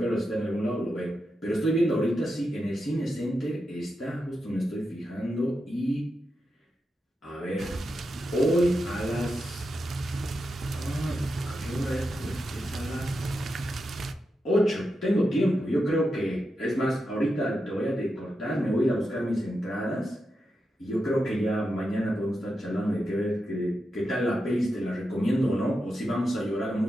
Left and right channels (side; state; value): both; normal; correlation 0.87